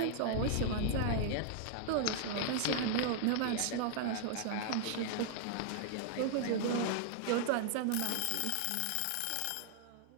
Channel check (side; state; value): both; different; correlation -0.01